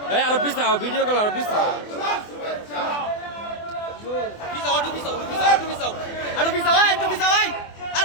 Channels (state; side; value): late; right; 24 ms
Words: আরো পিছাও ভিডিও কল আরো পিছাও